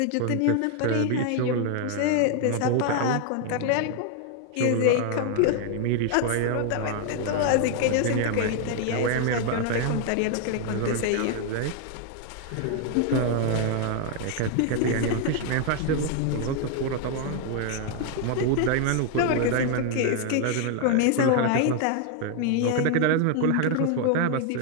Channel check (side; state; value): both; different; correlation 0.00